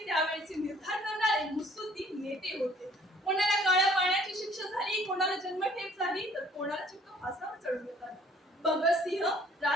त्यावेळेचे निर्धार करणारे मुत्सद्दी नेते होते. कोणाला काळ्या पाण्याची शिक्षा झाली, कोणाला जन्मठेप झाली, तर कोणाला चक्क फासावर चढवण्यात आलं. भगतसिंह,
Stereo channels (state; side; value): normal; both; correlation 0.58